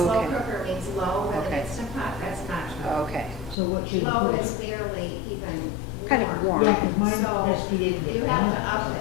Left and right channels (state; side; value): drops out; right; at 3.6 s